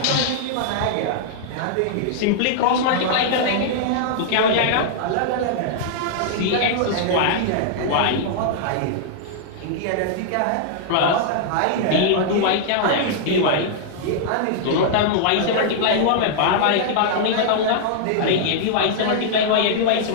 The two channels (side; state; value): both; different; correlation -0.01